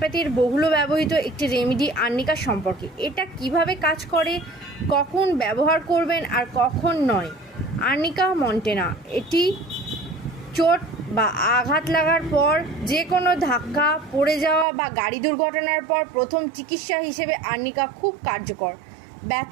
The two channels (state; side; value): drops out; left; at 14.7 s